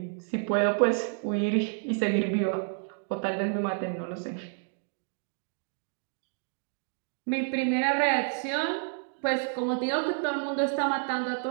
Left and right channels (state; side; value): silent; left; 58 dB below the other